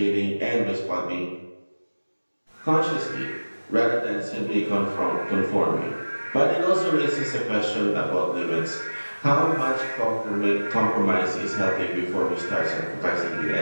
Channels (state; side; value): inverted; both; correlation -1.00